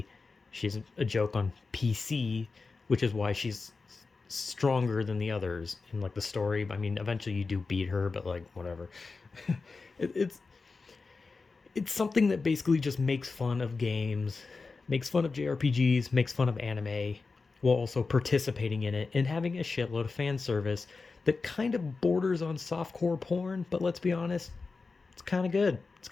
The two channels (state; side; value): quieter; right; 4.2 dB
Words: She's a joke on PC, which is why she's stronger than the others in like the story. I mean, eventually you do beat her, but like whatever. it's something that basically just makes fun of games, makes fun of JRPGs, makes fun of anime, while also participating in it and having a shitload of fan service that kind of borders on softcore porn, but let's be honest, it's kind of good. It's